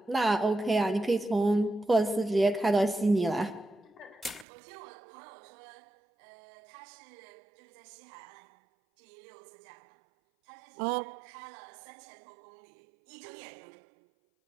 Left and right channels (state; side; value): drops out; left; at 4.5 s